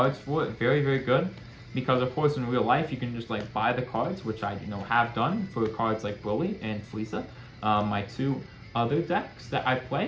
for it. Very, very good. Because of course in real life you can just like buy the cards, which I have done for cards like Broly and Frieza, my two other decks that I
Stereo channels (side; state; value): both; identical; correlation 1.00